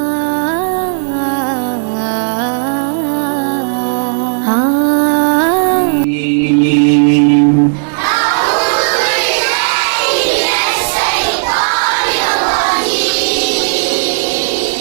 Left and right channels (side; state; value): left; silent; digital silence